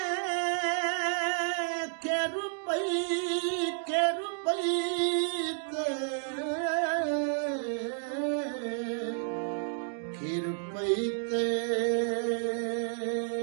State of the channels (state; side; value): silent; left; digital silence